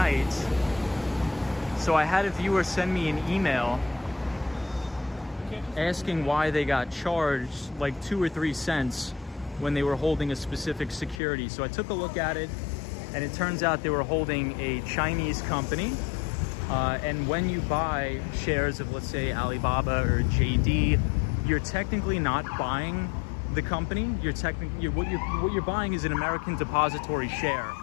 So I had a viewer send me an email asking why they got charged like 2 or 3 cents when they were holding a specific security. So I took a look at it, and it turns out they were holding a Chinese company. And when you buy shares of, let's say, Alibaba or JD, you're technically not buying the company. What you're buying is an American depository share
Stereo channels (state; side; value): drops out; right; at 11.2 s